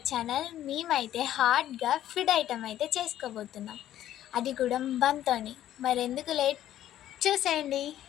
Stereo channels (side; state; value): right; quieter; 12.3 dB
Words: channel. మేమైతే హార్డ్గా ఫుడ్ ఐటమ్ అయితే చేసుకోబోతున్నాం, అది కూడా బంతోని. మరెందుకు లేట్, చూసేయండి.